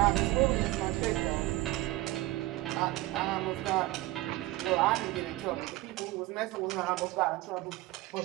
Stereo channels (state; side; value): quieter; left; 18.3 dB